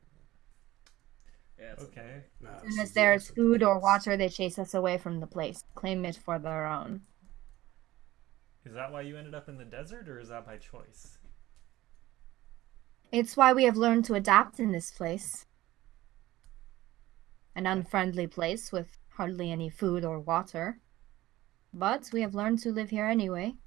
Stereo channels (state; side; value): quieter; left; 16.6 dB